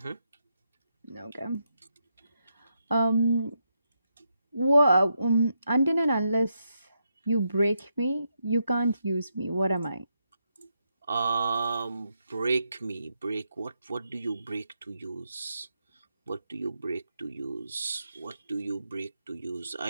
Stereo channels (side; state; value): both; inverted; correlation -0.82